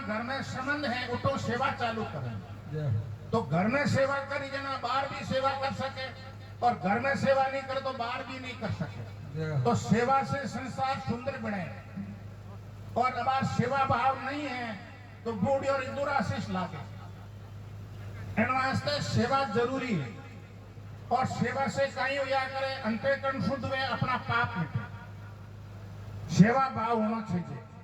में संबंध है उठो सेवा चालू करें। तो घर में सेवा करी जना बाहर भी सेवा कर सके, और घर में सेवा नहीं करे तो बाहर भी नहीं कर सके। तो सेवा से संसार सुंदर बने, और अब सेवा भाव नहीं है तो बूढ़ी और दुराशीष लागे। इन वास्ते सेवा जरूरी है, और सेवा से कहीं या करे अंतःकरण शुद्ध हुए, अपना पाप मिटे। सेवा भाव होना चाहिए।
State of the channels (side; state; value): both; identical; correlation 1.00